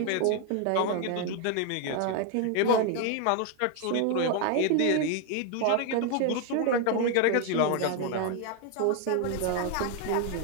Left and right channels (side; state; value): both; different; correlation 0.00